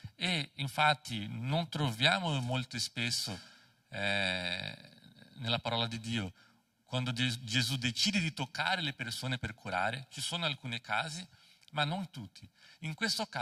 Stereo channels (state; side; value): identical; both; correlation 1.00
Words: e infatti non troviamo molto spesso nella parola di Dio quando Gesù decide di toccare le persone per curare, ci sono alcuni casi, ma non tutti. In questo